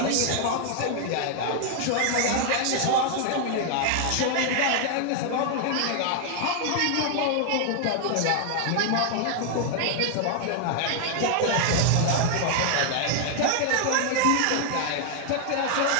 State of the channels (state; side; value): different; both; correlation 0.00